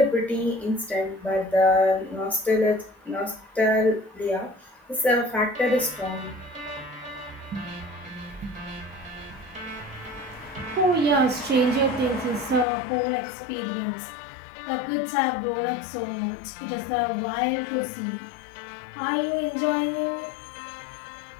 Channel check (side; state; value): right; drops out; at 12.7 s